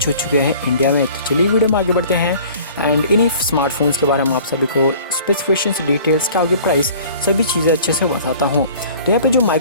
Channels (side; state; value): both; inverted; correlation -0.48